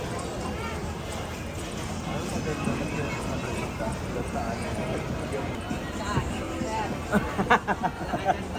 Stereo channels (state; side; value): identical; both; correlation 1.00